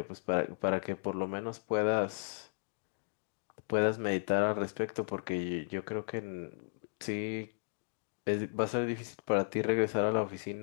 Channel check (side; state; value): right; silent; digital silence